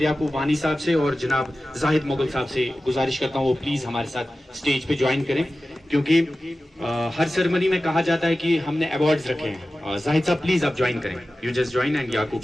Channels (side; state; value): both; normal; correlation 0.95